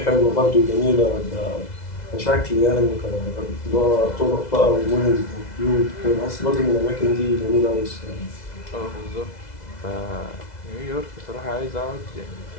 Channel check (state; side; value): late; right; 2.0 ms